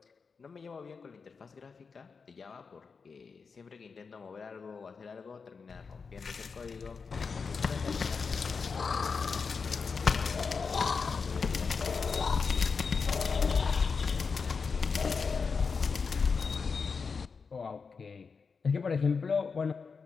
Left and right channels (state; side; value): quieter; right; 5.2 dB